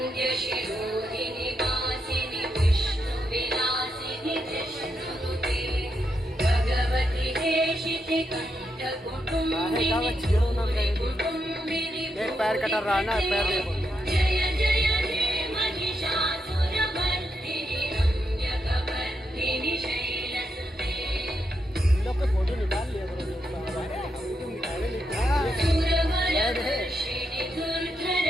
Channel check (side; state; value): both; normal; correlation 0.82